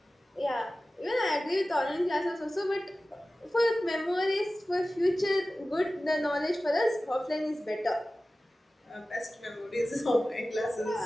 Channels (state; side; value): normal; both; correlation 0.96